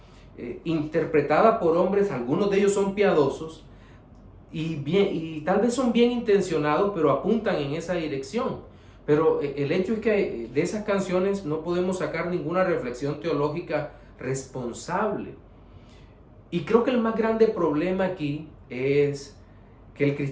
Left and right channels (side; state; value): both; identical; correlation 1.00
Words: interpretadas por hombres, algunos de ellos son piadosos y tal vez son bien intencionados, pero apuntan en esa dirección. Pero el hecho es que de esas canciones no podemos sacar ninguna reflexión teológica responsable. Y creo que el más grande problema aquí es que el